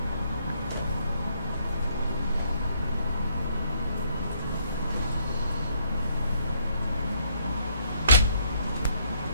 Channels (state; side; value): inverted; both; correlation -0.69